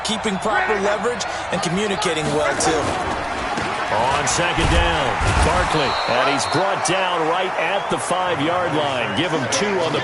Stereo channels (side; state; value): both; identical; correlation 1.00